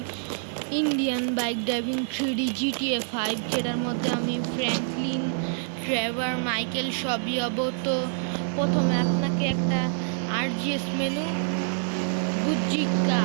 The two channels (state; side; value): silent; left; 61 dB below the other